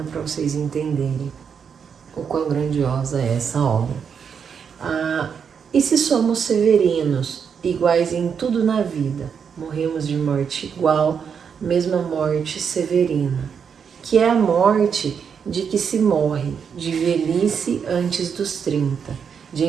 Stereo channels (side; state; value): left; quieter; 6.9 dB